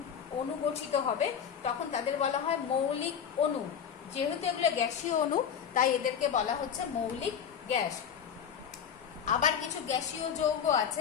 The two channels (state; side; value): quieter; right; 7.9 dB